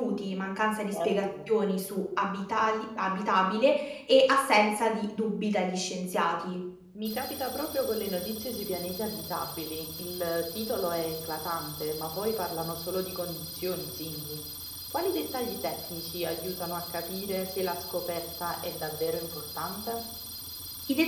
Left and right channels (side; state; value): both; identical; correlation 1.00